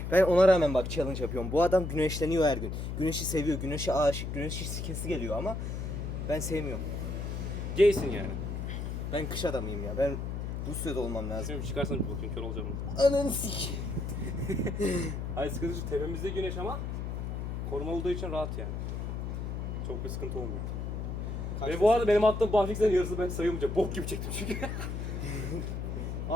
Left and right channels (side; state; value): left; noise; hum, 4 dB below the sound